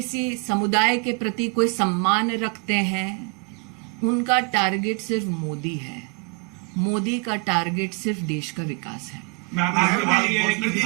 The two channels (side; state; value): left; quieter; 33.6 dB